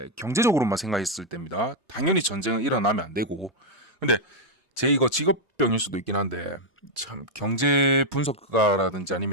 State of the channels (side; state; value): both; normal; correlation 0.00